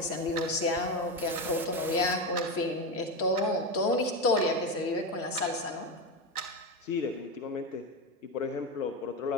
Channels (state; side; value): normal; both; correlation 0.15